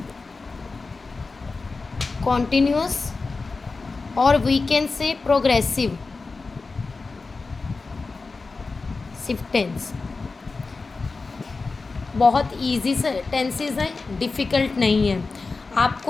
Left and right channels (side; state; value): right; quieter; 4.0 dB